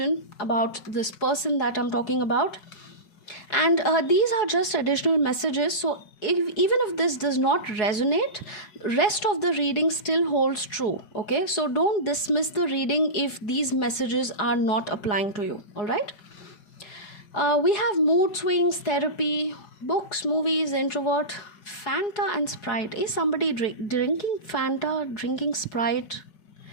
about this person that I'm talking about. And these are just additional messages. So even if this does not resonate, rest of the reading still holds true. Okay, so don't dismiss the reading if these messages are not applying to you. All right. We have mood swings, therapy, books, movies, introvert, Fanta and Sprite. Is somebody drinking Fanta, drinking Sprite?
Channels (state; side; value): late; right; 4.8 ms